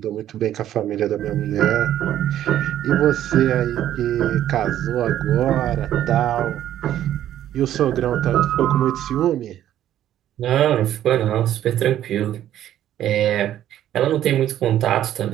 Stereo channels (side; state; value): left; quieter; 11.8 dB